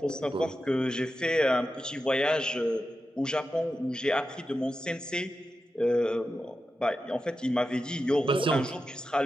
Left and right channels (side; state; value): both; normal; correlation 0.91